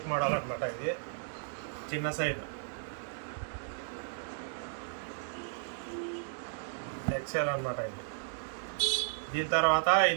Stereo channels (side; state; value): left; silent; digital silence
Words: మోడల్ అనమాట. ఇది చిన్న సైజు ఎక్సెల్ అనమాట. ఇది దీని తర్వాత